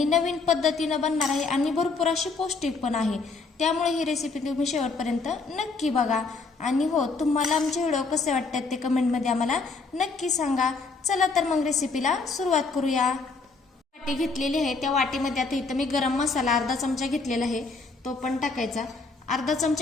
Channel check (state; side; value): quieter; right; 4.2 dB